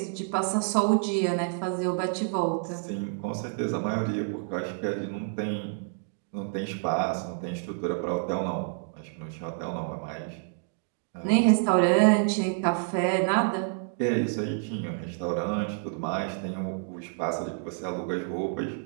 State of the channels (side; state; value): left; silent; 59 dB below the other